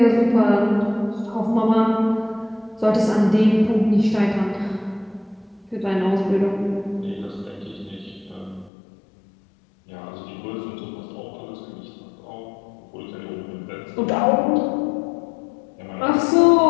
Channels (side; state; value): right; drops out; at 8.7 s